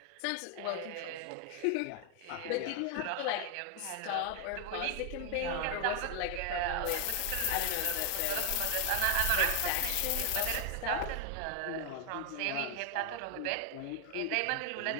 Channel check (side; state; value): both; different; correlation 0.00